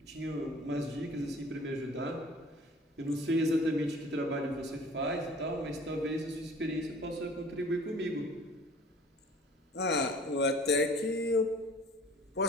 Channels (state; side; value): normal; both; correlation 0.48